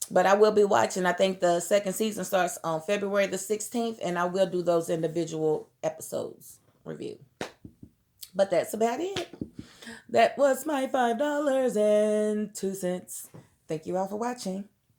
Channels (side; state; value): both; identical; correlation 1.00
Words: But I will be watching. I think the second season starts on February the 16th. And I will do those individual episodes review. But that's about it. That was my $5.02. Thank you all for watching.